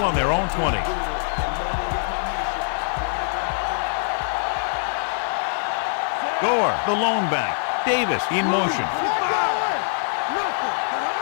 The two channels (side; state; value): right; silent; digital silence